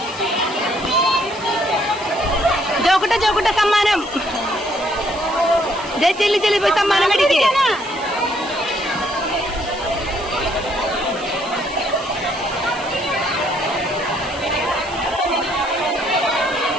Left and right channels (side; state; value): right; noise; hiss, 18 dB below the sound